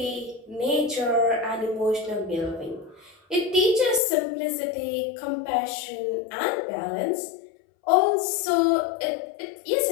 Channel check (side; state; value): right; drops out; at 4.0 s